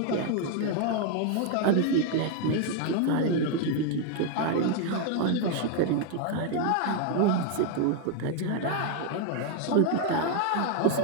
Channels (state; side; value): different; both; correlation 0.01